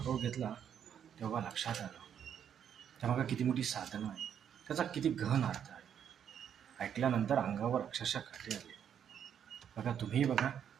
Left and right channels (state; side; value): quieter; left; 8.7 dB